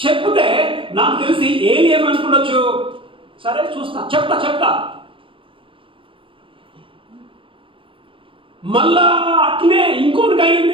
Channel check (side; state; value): left; late; 0.25 ms